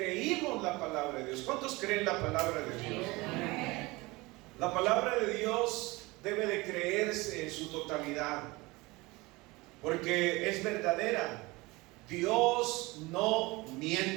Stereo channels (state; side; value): quieter; left; 22.9 dB